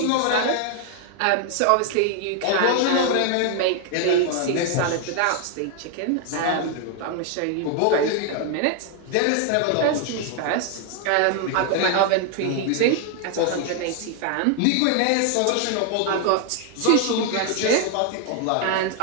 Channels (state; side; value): different; both; correlation 0.00